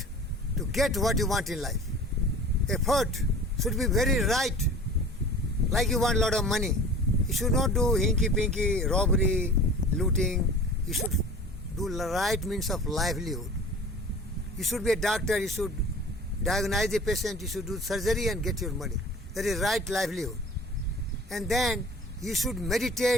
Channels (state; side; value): normal; both; correlation 0.42